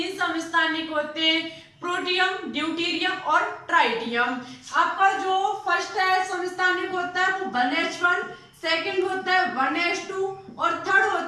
समस्थानिक होते हैं, प्रोटियम, ड्यूटेरियम और ट्राइटियम। आपका जो फर्स्ट है समस्थानिक होता है वो 1H1, सेकंड होता है 1H2 और थर्ड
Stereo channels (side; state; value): both; identical; correlation 1.00